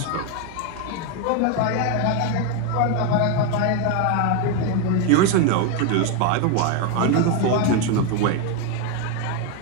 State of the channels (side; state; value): both; different; correlation 0.01